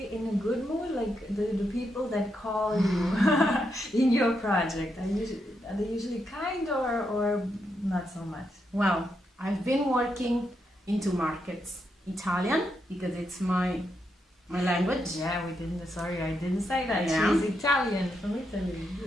in a good mood, like the people that call you in your project? Are they usually kind or not so much? Well, I've been working into markets, Italian, because it's my language. Yeah, I didn't say that. Yeah. She's Italian, from Italy.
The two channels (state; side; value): normal; both; correlation 0.82